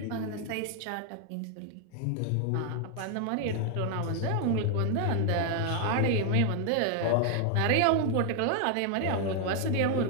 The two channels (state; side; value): different; both; correlation 0.00